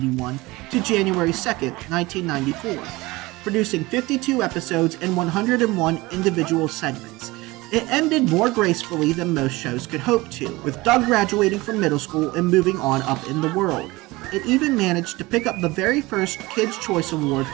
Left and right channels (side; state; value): left; quieter; 21.3 dB